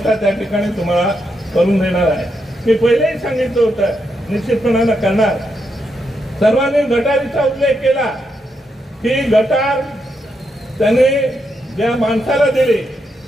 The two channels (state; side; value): normal; both; correlation 0.82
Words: त्या ठिकाणी तुम्हाला करून देणार आहे। मी पहिलेही सांगितलं होतं, निश्चितपणानं करणार। सर्वांनी गटारीचा उल्लेख केला की गटार त्याने ज्या माणसाला दिली